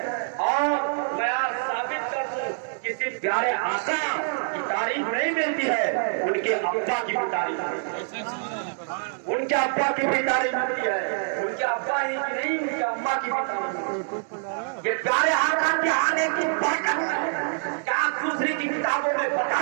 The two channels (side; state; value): left; silent; digital silence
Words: اور میں ثابت کر دوں کسی پیارے آقا کی تعریف نہیں ملتی ہے، ان کے ابا کی بھی تعریف، ان کے ابا کی بھی تعریف ملتی ہے. ان کے ابا ہی کی نہیں، ان کے اما کی بھی تعریف. یہ پیارے آقا کے آنے کی برکت ہے. کیا دوسری کی کتابوں میں